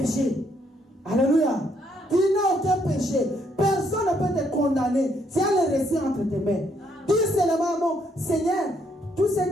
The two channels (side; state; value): both; normal; correlation 0.71